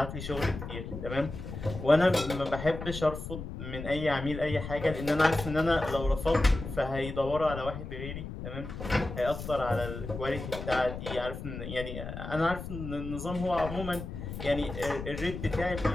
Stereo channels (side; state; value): left; noise; rumble, 8 dB below the sound